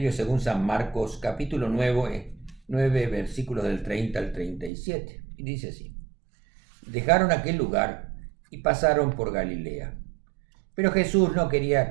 según San Marcos, capítulo 9, versículos del 30 al 37. Y dice así: Dejaron aquel lugar y pasaron por Galilea. Pero Jesús no quería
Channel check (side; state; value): left; drops out; at 4.7 s